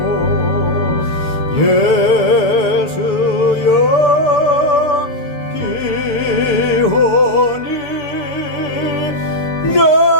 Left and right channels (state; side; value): late; right; 6.9 ms